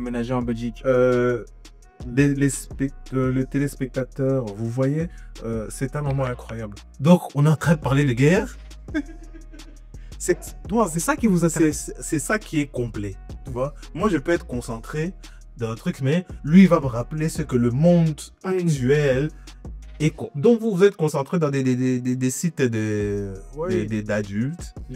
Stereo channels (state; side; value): identical; both; correlation 1.00